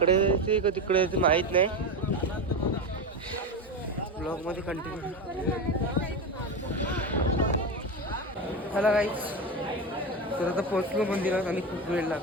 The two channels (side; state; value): both; normal; correlation 0.19